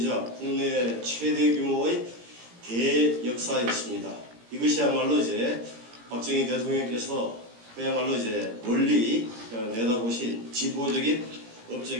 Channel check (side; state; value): left; late; 17 ms